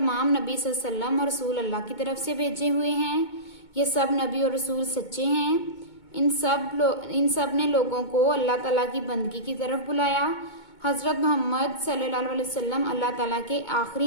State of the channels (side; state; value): right; late; 2.2 ms